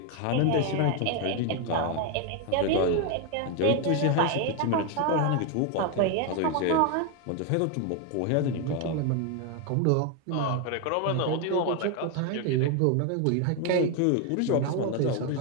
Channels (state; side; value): different; both; correlation 0.01